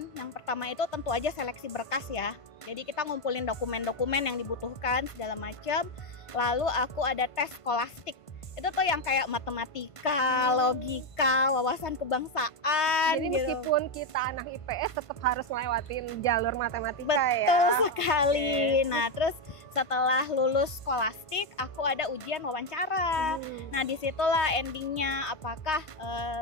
Yang pertama itu tentu aja seleksi berkas ya. Jadi kita ngumpulin dokumen-dokumen yang dibutuhkan segala macam. Lalu aku ada tes skolastik. Itu tuh yang kayak matematika, logika, wawasan kebangsaan. Jadi gitu. Meskipun kita anak IPS tetap harus ngelewatin jalur matematika. Betul sekali. Nah, terus setelah lulus skolastik, aku ada ujian wawancara. Nah, disitulah endingnya apakah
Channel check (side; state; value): right; late; 1.5 ms